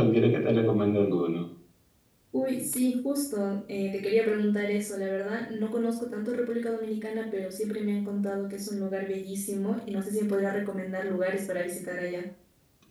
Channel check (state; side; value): identical; both; correlation 1.00